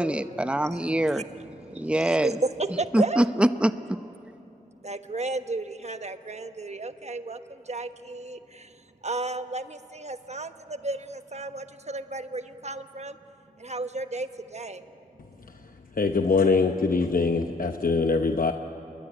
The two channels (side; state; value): both; normal; correlation 0.67